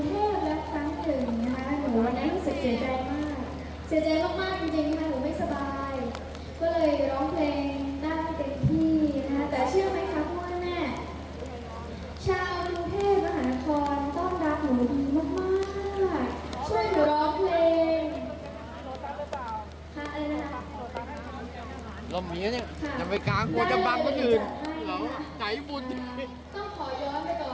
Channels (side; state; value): both; identical; correlation 1.00